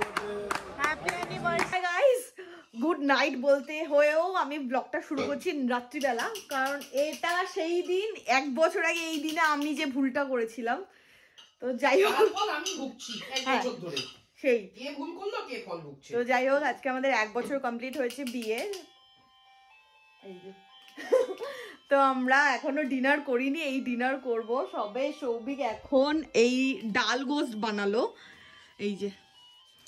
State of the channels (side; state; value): both; identical; correlation 1.00